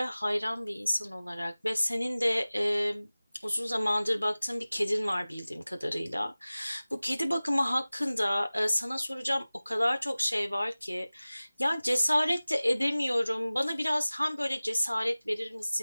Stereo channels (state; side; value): inverted; both; correlation -0.98